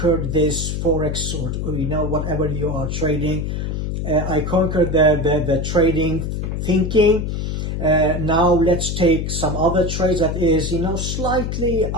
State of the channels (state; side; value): noise; left; hum, 2 dB below the sound